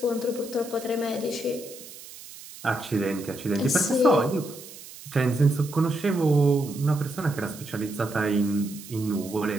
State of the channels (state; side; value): noise; right; hiss, 16 dB below the sound